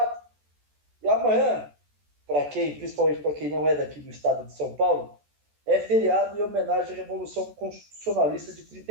E amanhã, principalmente para quem não é daqui do estado de São Paulo, é feriado em homenagem à Revolução Constitucionalista de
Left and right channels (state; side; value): late; left; 14 ms